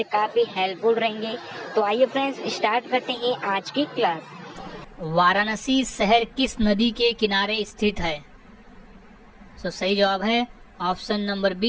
काफ़ी हेल्पफुल रहेंगे। तो आइए फ्रेंड्स, स्टार्ट करते हैं आज की क्लास। वाराणसी शहर किस नदी के किनारे स्थित है? सही जवाब है ऑप्शन नंबर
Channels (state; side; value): identical; both; correlation 1.00